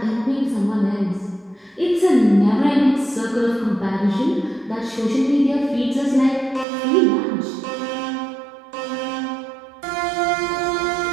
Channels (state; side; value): drops out; left; at 6.7 s